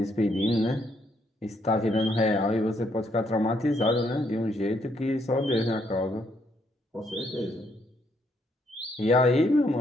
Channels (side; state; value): both; normal; correlation 0.73